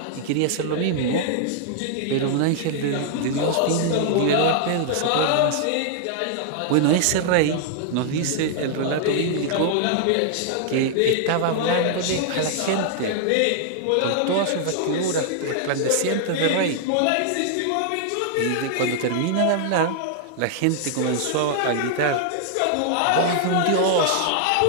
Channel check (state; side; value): different; both; correlation -0.01